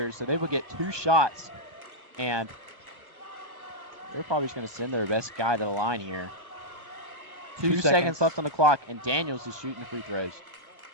So they will get 2 shots, and they're probably just going to send their best guy to the line here. 2 seconds left on the clock, and Daniels is shooting free throws.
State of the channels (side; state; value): left; late; 1.2 ms